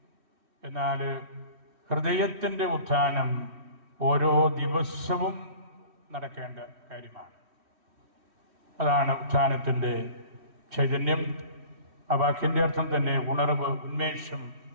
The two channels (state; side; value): late; left; 3.1 ms